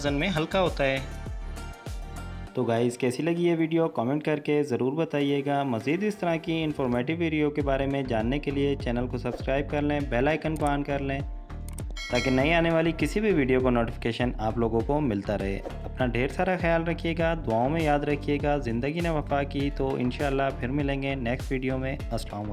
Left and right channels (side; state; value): both; identical; correlation 1.00